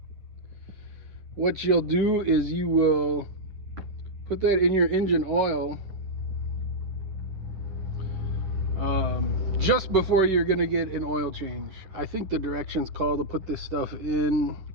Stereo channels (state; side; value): late; left; 10 ms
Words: What you'll do is you will put that in your engine oil just before you're going to get an oil change. I think the directions call to put this stuff in,